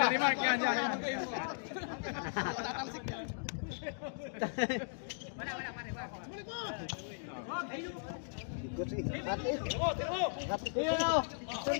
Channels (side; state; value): right; silent; digital silence